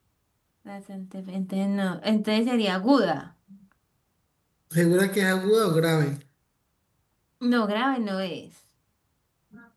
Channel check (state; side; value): identical; both; correlation 1.00